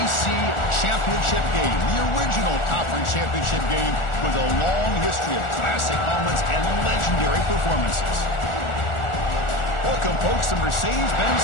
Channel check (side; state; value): right; late; 1.4 ms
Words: championship game, the original conference championship game with a long history of classic moments and legendary performances. Welcome, folks, to Mercedes-Benz